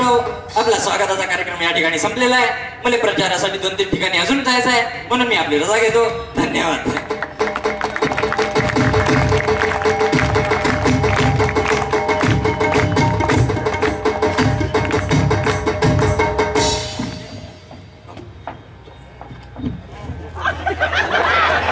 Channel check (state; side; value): identical; both; correlation 1.00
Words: आपला स्वागताचा कार्यक्रम या ठिकाणी संपलेला आहे. मला प्रचारासाठी 2-3 ठिकाणी अजून जायचं आहे, म्हणून मी आपली रजा घेतो. धन्यवाद.